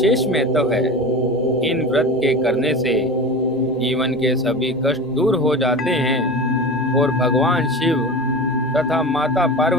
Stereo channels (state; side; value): noise; left; rumble, 27 dB below the sound